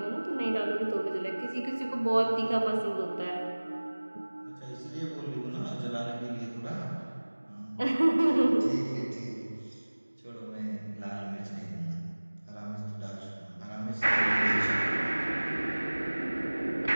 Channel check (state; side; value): inverted; both; correlation -1.00